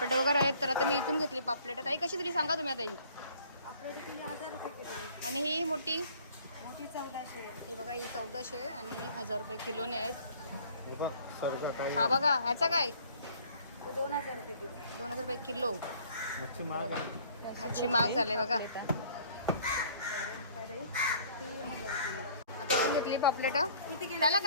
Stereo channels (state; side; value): inverted; both; correlation -0.55